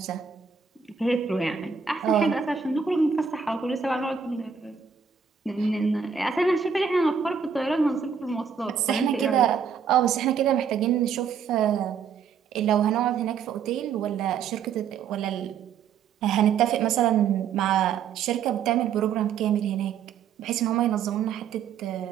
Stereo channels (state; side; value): quieter; left; 6.7 dB